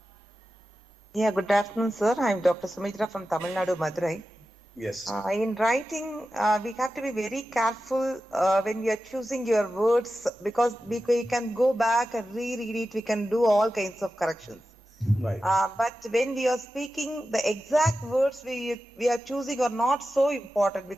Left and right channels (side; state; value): both; normal; correlation 0.92